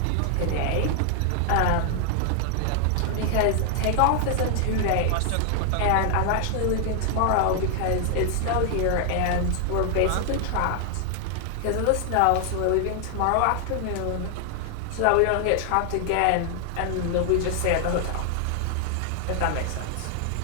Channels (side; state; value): both; different; correlation 0.00